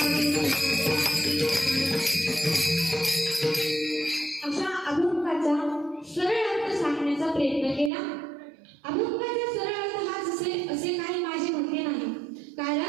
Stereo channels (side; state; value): left; drops out; at 7.9 s